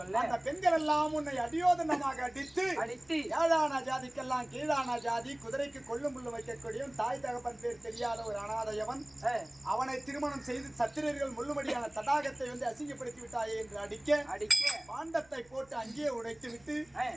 அந்த பெண்கள் எல்லாம் உன்னை அடியோதனமாக அடித்து ஏழான ஜாதிக்கெல்லாம் கீழான ஜாதி, குதிரைக்கு கொள்ளும் புல்லு வைக்கக்கூடிய தாய் தகப்பன் பேர் தெரியாத ஒரு அனாதையவன், அவனை திருமணம் செய்து சத்திரர்கள் முள்ளுமடியான தடாகத்தை பாண்டத்தை வந்து அசிங்கப்படுத்தி விட்டாயே என்று அடிக்க பாண்டத்தை போட்டு அங்கேயே உடைத்து விட்டு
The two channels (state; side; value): noise; right; hum, 30 dB below the sound